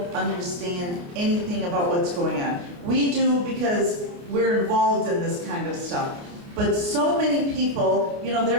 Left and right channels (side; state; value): left; late; 29 ms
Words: understand anything about what's going on. We do because we're involved in this kind of stuff. But so many people,